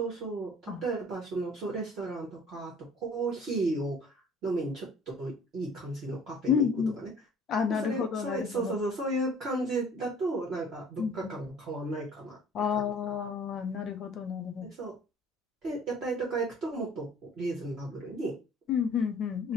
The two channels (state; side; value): normal; both; correlation 0.51